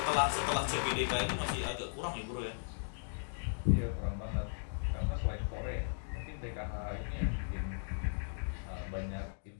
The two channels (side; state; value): right; silent; digital silence